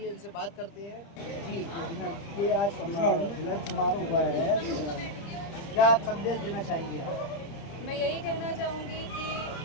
इनसे बात करते हैं। जी, ये आज मिलन समारोह हुआ है, क्या संदेश देना चाहेंगे आप? मैं यही कहना चाहूँगी कि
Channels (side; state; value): right; late; 30 ms